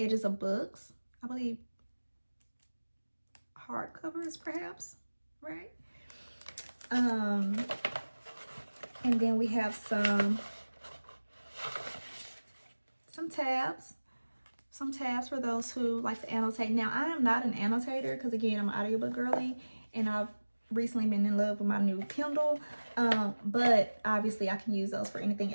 of books. I believe hardcovers, perhaps, right? And then we have some tabs. Some tabs for those who like to annotate. Now, I am not an annotator because, again, I'm an audiobook girly, and I've recently been in love with my new Kindle. But obviously I can use those for anything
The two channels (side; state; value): both; inverted; correlation -1.00